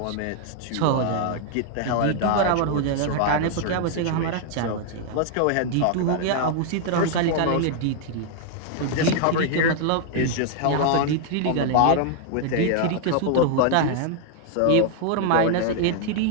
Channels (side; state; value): both; different; correlation 0.00